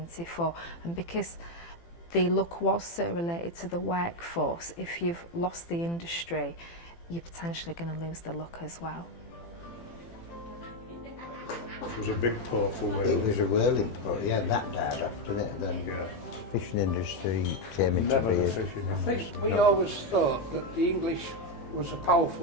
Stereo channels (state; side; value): late; right; 18 ms